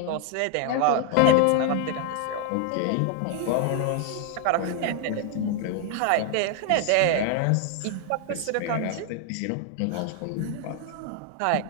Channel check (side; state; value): both; different; correlation 0.00